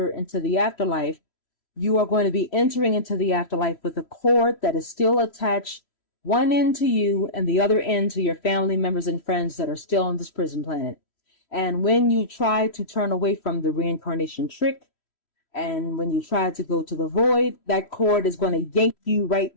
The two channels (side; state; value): right; late; 3.1 ms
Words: into the afterlife, you are going to be entering into the afterlife with a cord that is still attached, one end to you and the other end to your family members and friends that are still on this prison planet. And when you try to turn away from the reincarnation trick, and when you try to go to the void, that cord is going to yank you right